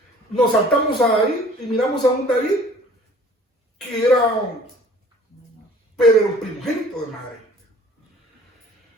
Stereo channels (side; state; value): both; normal; correlation 0.51